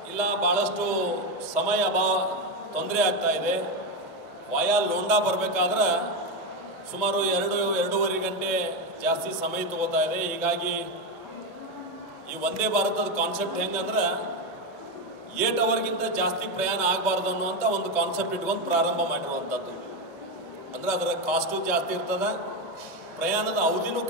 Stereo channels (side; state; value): both; normal; correlation 0.11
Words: ಇಲ್ಲ ಭಾಳಷ್ಟು ಸಮಯ ತೊಂದರೆ ಆಗ್ತಾ ಇದೆ, ವಾಯಾ ಲೋಂಡಾ ಬರಬೇಕಾದ್ರೆ ಸುಮಾರು 2-2.5 ಗಂಟೆ ಜಾಸ್ತಿ ಸಮಯ ತಗೋತಾ ಇದೆ. ಹೀಗಾಗಿ ಈ ವಂದೇ ಭಾರತದ ಕಾನ್ಸೆಪ್ಟ್ ಹೆಂಗಂದ್ರೆ 8 ಅವರ್ಗಿಂತ ಜಾಸ್ತಿ ಪ್ರಯಾಣ ಆಗಬಾರ್ದು ಅನ್ನುವಂಥ ಒಂದು ಕಾನ್ಸೆಪ್ಟ್ ಇಟ್ಕೊಂಡು ಪ್ರಾರಂಭ ಮಾಡಿರುವಂಥದ್ದು. ಅಂದರೆ ಅದರ ಕಾಸ್ಟು ಜಾಸ್ತಿ ಇರ್ತದೆ, ಪ್ರಯಾಣದ ಅವಧಿನೂ